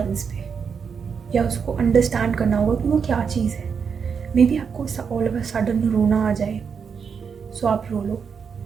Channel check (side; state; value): left; quieter; 6.3 dB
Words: पे, या उसको अंडरस्टैंड करना होगा कि वो क्या चीज़ है। मे बी आपको ऑल ऑफ अ सडन रोना आ जाए, सो आप रो लो,